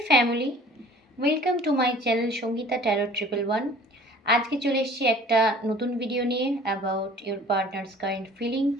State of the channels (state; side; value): normal; both; correlation 0.49